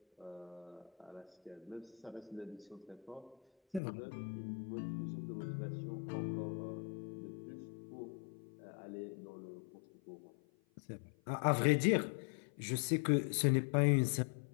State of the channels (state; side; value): drops out; right; at 3.8 s